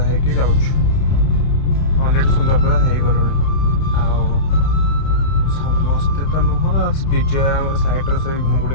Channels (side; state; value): right; late; 30 ms